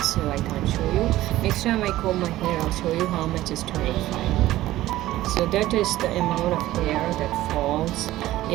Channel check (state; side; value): quieter; left; 15.5 dB